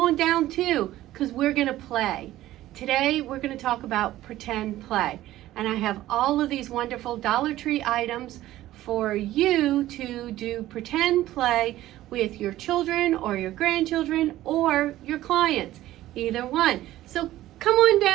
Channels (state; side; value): quieter; left; 14.9 dB